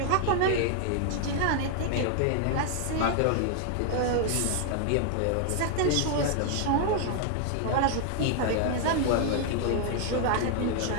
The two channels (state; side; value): different; both; correlation 0.00